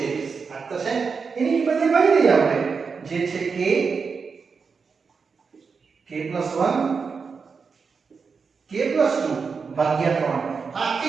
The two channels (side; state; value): left; quieter; 5.3 dB